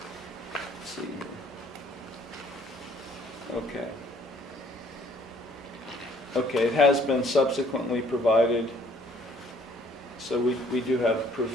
let's see here. Okay. Okay, it has been subsequently provided, so we do have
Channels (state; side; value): normal; both; correlation 0.60